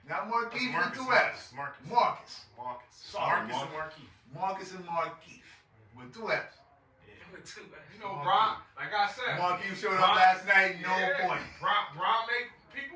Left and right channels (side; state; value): both; identical; correlation 1.00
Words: Not Marquise with two F's. Marcus. Sorry, Marcus and Marquise. Marcus and Marquise with 2 F's. You know, Bron, like I said. Marquise showed up last night, no point. Bron make